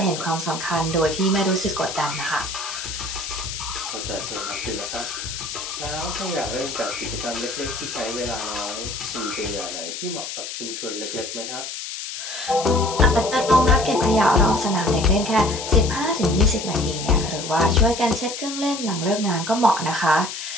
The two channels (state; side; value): noise; left; hiss, 7 dB below the sound